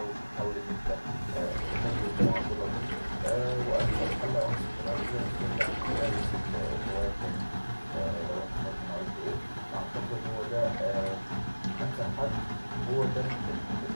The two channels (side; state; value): both; inverted; correlation -1.00